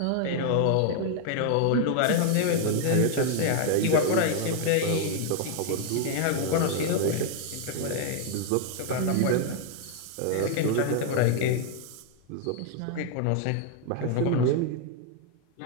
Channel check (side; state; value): both; different; correlation 0.00